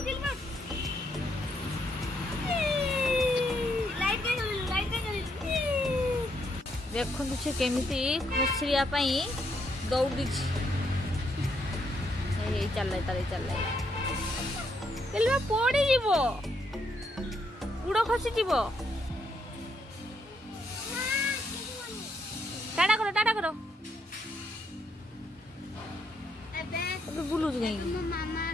देखु से केमिति खसरिया पई दौड़ी चल पड़ी जीवो गुड़ खसी जीवो टाटा करो एबे बुलु गई मामा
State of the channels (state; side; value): normal; both; correlation 0.75